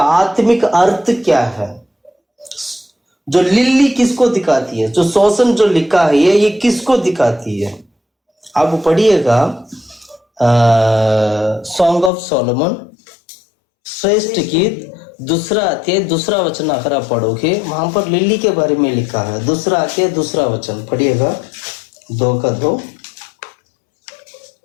आत्मिक अर्थ क्या है? जो लिल्ली किसको दिखाती है? जो शोषण जो लिखा है ये किसको दिखाती है? आप पढ़िएगा सॉन्ग ऑफ सोलोमन, श्रेष्ठ गीत, दूसरा अध्याय दूसरा वचन अगर आप पढ़ोगे, वहां पर लिल्ली के बारे में लिखा है। दूसरा अध्याय दूसरा वचन पढ़िएगा, 2 का 2।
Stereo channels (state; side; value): drops out; right; at 12.1 s